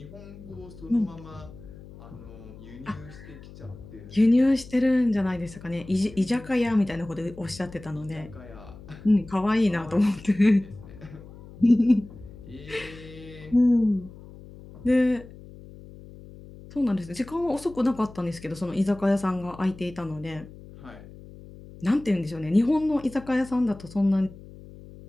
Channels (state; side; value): noise; left; hum, 18 dB below the sound